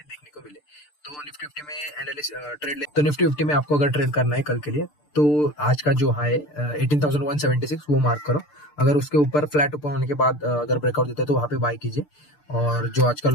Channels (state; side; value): late; right; 6.7 ms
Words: देखने को मिले। तो निफ्टी 50 में तो निफ्टी 50 में आपको अगर ट्रेड करना है कल के लिए तो आज का जो हाई 18,176 वो मार्क करो। अगर उसके ऊपर फ्लैट ओपन होने के बाद अगर ब्रेकआउट देता है तो वहाँ पे बाय कीजिए। और जो आज का